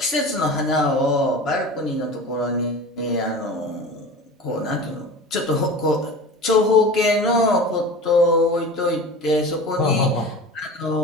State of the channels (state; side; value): normal; both; correlation 0.35